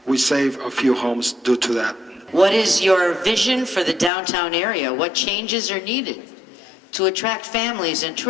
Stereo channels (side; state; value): right; drops out; at 4.1 s